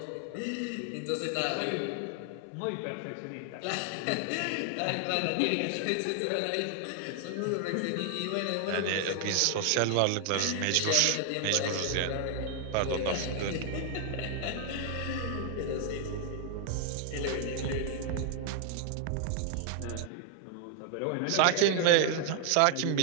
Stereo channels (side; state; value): both; different; correlation 0.00